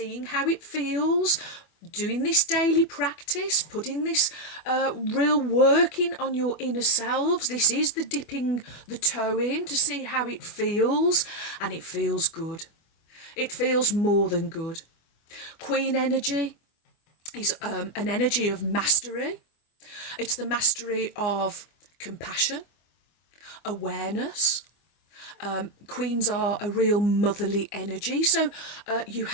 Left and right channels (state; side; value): late; right; 25 ms